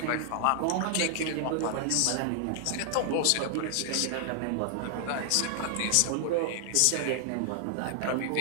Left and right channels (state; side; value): different; both; correlation 0.00